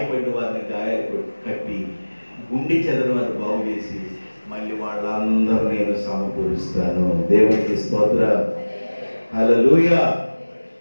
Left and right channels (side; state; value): both; inverted; correlation -1.00